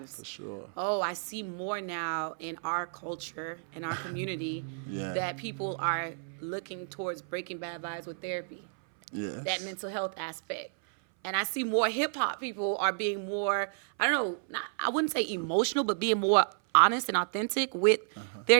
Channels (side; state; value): left; silent; 57 dB below the other